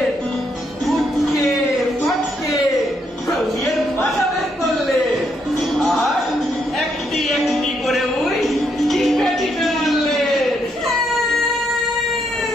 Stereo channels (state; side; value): normal; both; correlation 0.76